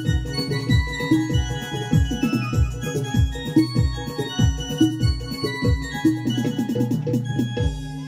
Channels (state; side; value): identical; both; correlation 1.00